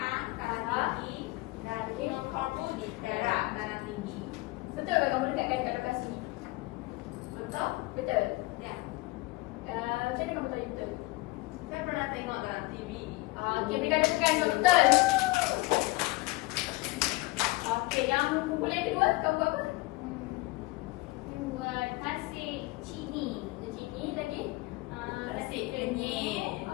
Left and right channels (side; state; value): right; quieter; 22.0 dB